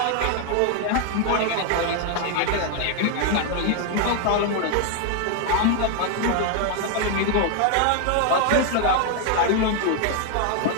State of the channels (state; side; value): different; both; correlation 0.00